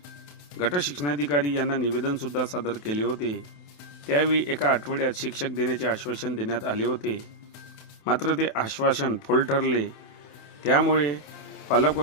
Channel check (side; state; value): right; late; 28 ms